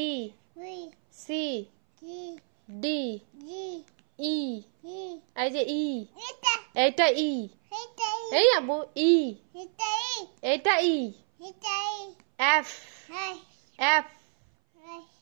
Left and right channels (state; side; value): silent; left; 59 dB below the other